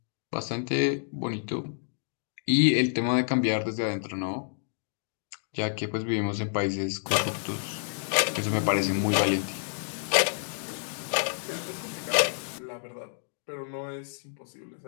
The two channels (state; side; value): silent; right; digital silence